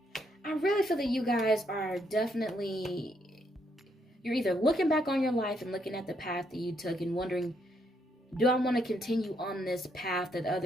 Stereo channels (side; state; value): both; normal; correlation 0.75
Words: I really feel that you guys are definitely, you're either looking back on your life and looking at the path that you took and wondering, do I want to continue on this path that